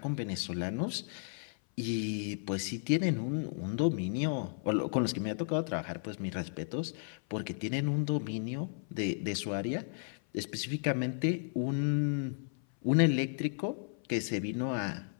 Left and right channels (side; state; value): right; silent; 55 dB below the other